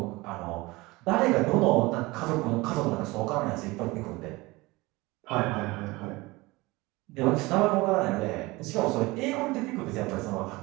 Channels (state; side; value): quieter; left; 22.1 dB